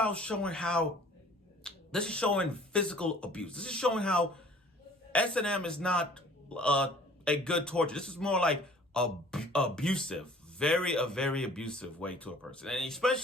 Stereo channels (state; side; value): normal; both; correlation 0.51